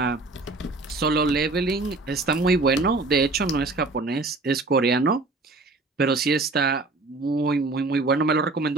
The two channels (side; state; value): left; quieter; 3.4 dB